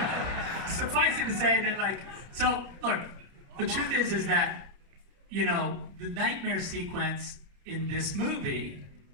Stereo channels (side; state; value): left; late; 30 ms